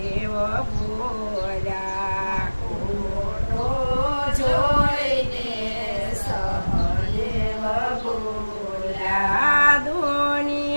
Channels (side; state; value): both; inverted; correlation -1.00